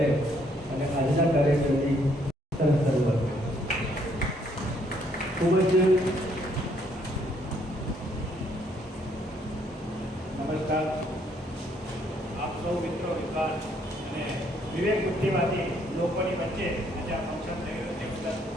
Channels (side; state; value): both; normal; correlation 0.68